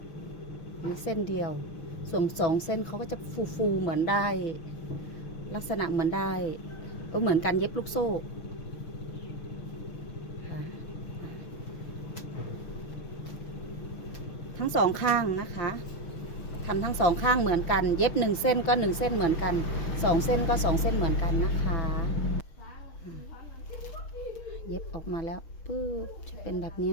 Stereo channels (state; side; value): late; right; 5.9 ms